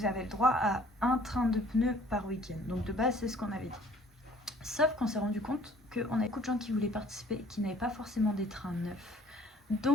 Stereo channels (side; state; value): both; normal; correlation 0.55